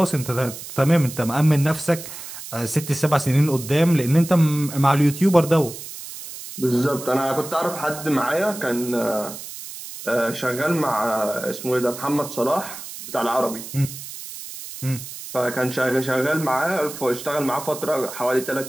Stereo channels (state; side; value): noise; right; hiss, 12 dB below the sound